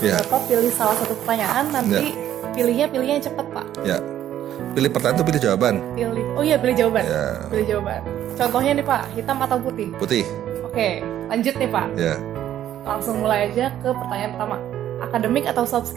Ya. Bapak pilih salah satu pertanyaan, nanti pilihnya yang cepat Pak. Ya. Pilih pertanyaan atau pilih jawaban? Pilih jawaban. Ya. Pilih jawaban. Contohnya nih Pak, hitam atau putih? Putih. Oke, lanjut nih Pak. Ya. Langsung mulai aja ke pertanyaan pertama. Akademik atau soft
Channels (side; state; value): left; quieter; 11.5 dB